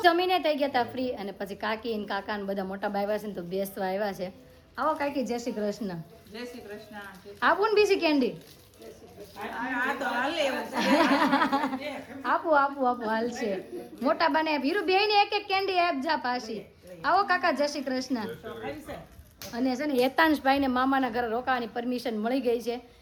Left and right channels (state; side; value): identical; both; correlation 1.00